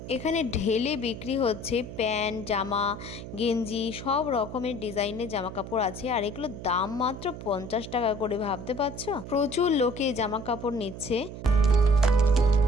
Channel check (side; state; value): right; noise; hum, 10 dB below the sound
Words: এখানে ঢেলে বিক্রি হচ্ছে প্যান্ট, জামা, গেঞ্জি, সব রকমের ডিজাইনের জামা কাপড় আছে। আর এগুলো দাম মাত্র 50 টাকা করে, ভাবতে পারছো? প্রচুর লোকে জামা কাপড় নিচ্ছে।